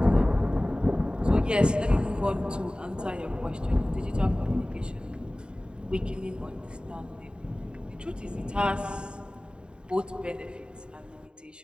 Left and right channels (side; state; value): left; late; 0.050 ms